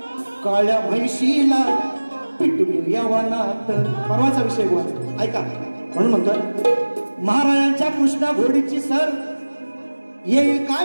काळ्या म्हैशीला पिटून यवनात. परवाचा विषय बोला ऐका म्हणून म्हणतोय महाराजांच्या कृष्णा घोडीची सर येईल का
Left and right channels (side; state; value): both; inverted; correlation -1.00